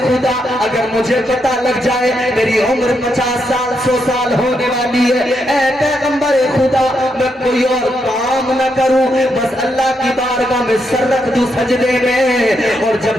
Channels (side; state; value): both; normal; correlation 0.80